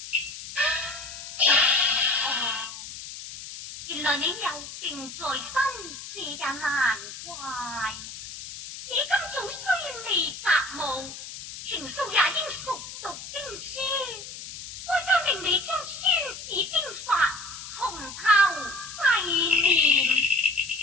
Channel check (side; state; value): left; noise; hiss, 11 dB below the sound